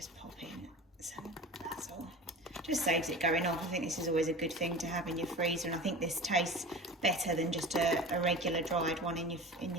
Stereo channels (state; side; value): normal; both; correlation 0.35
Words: pop in some basil. Just saves it going off. I think this is always a good thing to have in your freezer, and I think this tastes better than just a regular dried one in your